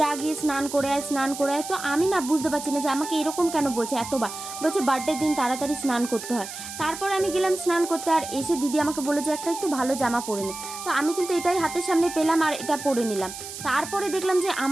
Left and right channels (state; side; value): noise; right; hiss, 10 dB below the sound